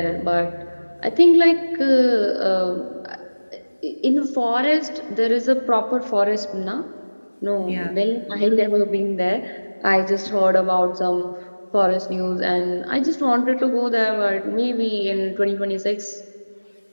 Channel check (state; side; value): inverted; both; correlation -1.00